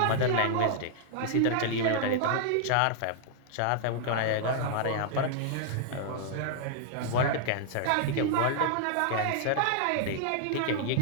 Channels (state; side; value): different; both; correlation -0.01